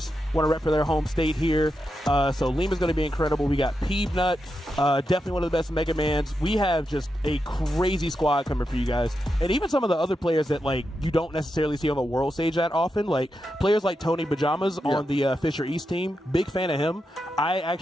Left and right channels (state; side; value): normal; both; correlation 0.87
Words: want to rep for their home state here. So Lima's going to be incredible. We got Peebnut, definitely one of the best Mega Mans. We have just a crazy squad coming for you guys. And even some of the other players that like you don't necessarily see on the world stage that often, like players like Tony Pajamas on the Fisher East team. Big fan of him. I